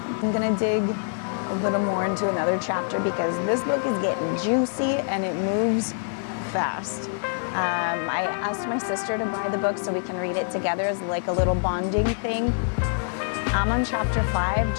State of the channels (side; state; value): right; silent; digital silence